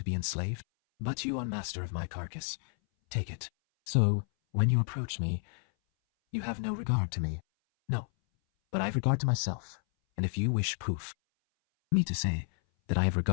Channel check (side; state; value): right; silent; 57 dB below the other